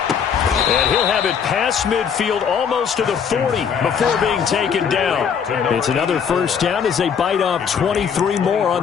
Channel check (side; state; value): right; quieter; 7.1 dB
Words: And he'll have it past midfield almost to the 40 before being taken down. It's another 1st down as they bite off 23 more on